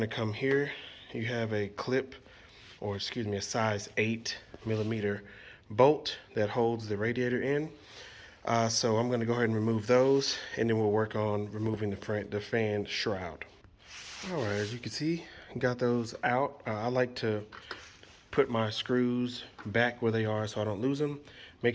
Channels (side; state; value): both; identical; correlation 1.00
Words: to come here. You have a clip, or excuse me, a size 8mm bolt that holds the radiator in. So I'm going to go ahead and remove those, and then we'll work on removing the fan shroud. All right, as you can see, got those out. I like to put my screws back where they are so I don't lose them.